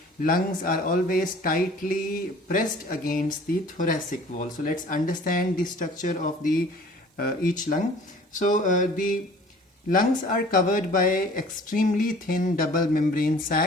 lungs are always tightly pressed against the thoracic wall. So let's understand the structure of the each lung. So the lungs are covered by extremely thin double membrane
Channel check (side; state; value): both; normal; correlation 0.49